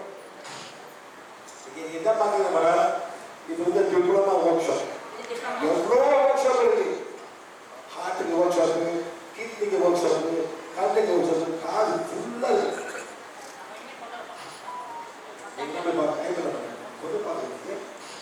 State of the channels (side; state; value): both; identical; correlation 1.00